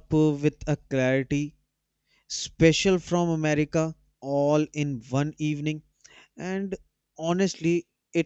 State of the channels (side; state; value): both; identical; correlation 1.00